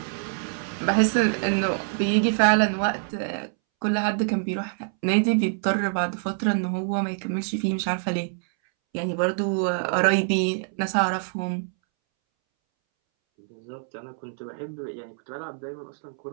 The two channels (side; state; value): left; silent; 61 dB below the other